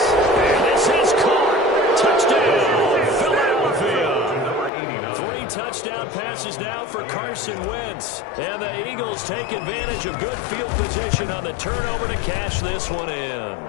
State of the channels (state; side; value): drops out; right; at 4.7 s